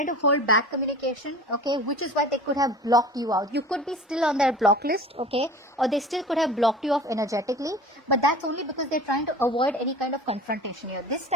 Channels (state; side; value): normal; both; correlation 0.39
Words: to hold back communication, okay, which is why they could have blocked you out. You could be still on their block list, okay, or they still could have blocked you off energetically, but that's only because they're trying to avoid any kind of confrontation here. This